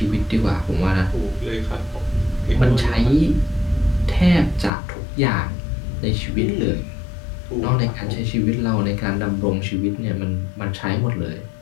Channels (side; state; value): right; drops out; at 4.7 s